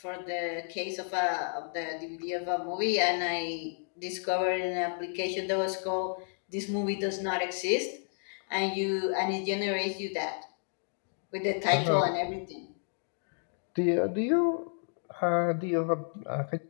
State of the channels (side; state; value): right; silent; 57 dB below the other